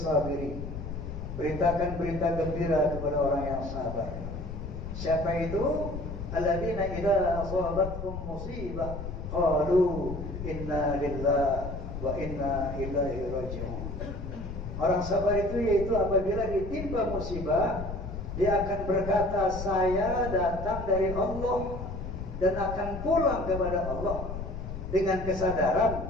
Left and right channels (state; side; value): noise; left; rumble, 7 dB below the sound